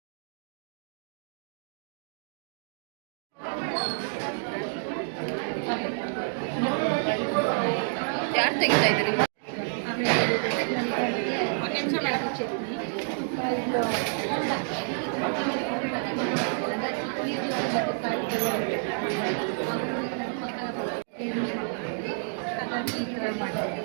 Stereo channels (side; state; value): left; silent; 59 dB below the other